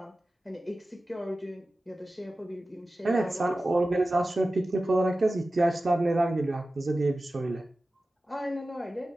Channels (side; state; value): both; normal; correlation 0.95